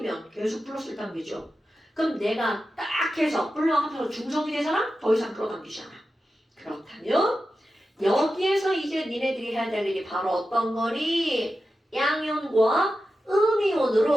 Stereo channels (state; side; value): normal; both; correlation 0.91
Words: 계속 플러스를 당기죠. 그럼 내가 딱 해서 물랑 합쳐서 중성이 되잖아? 더 이상 끌어당기지 않아. 그렇다면 여기에서 이제 니네들이 해야 될 일이 바로 어떤 거니? 양이온과